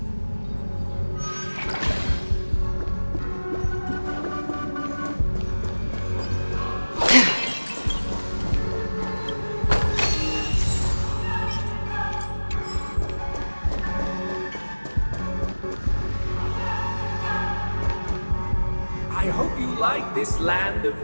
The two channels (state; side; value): inverted; both; correlation -1.00